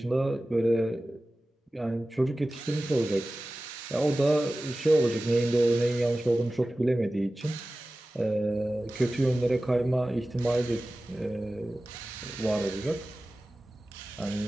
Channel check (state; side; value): normal; both; correlation 0.96